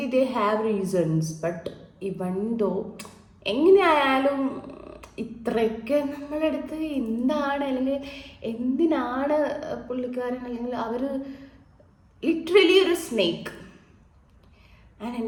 they have reasons, but ഇവൻ ദോ എങ്ങനെയായാലും ഇത്രയൊക്കെ നമ്മളടുത്ത് എന്താണ് അല്ലെങ്കിൽ എന്തിനാണ് പുള്ളിക്കാരൻ അല്ലെങ്കിൽ അവർ ലിറ്ററലി ഒരു സ്നേക്ക്. ആൻഡ്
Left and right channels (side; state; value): both; identical; correlation 1.00